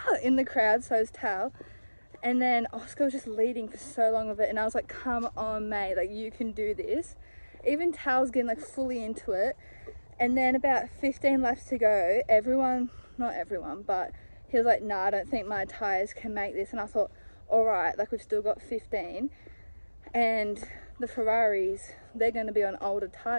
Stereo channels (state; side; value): inverted; both; correlation -1.00